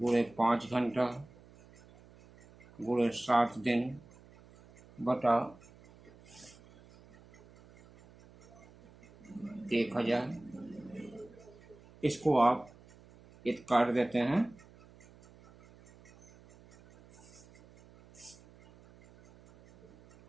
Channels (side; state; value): right; noise; hum, 24 dB below the sound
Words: 5 घंटा गुणे 7 दिन बटा 1000। इसको आप काट देते हैं।